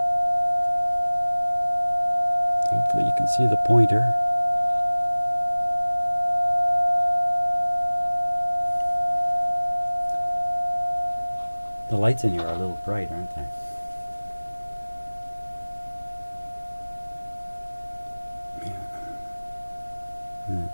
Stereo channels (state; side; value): inverted; both; correlation -1.00